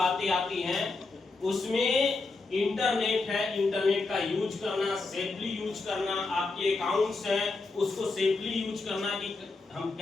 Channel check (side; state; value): right; quieter; 3.7 dB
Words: आती हैं, उसमें इंटरनेट है, इंटरनेट का यूज करना, सेफली यूज करना, आपके अकाउंट्स हैं उसको सेफली यूज करना कि हम